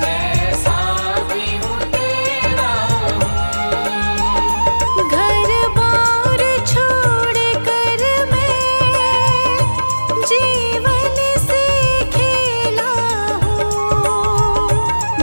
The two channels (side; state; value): both; inverted; correlation -1.00